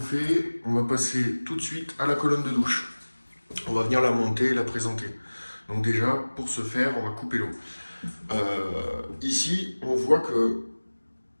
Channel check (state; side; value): inverted; both; correlation -1.00